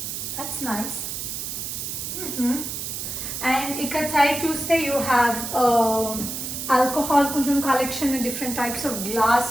That's nice. And ఇక్కడ సైడ్ చూస్తే you have alcohol కొంచెం collection, different types of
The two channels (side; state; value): right; noise; hiss, 5 dB below the sound